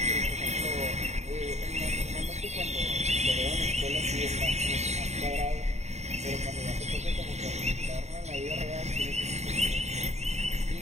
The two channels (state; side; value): late; left; 0.32 ms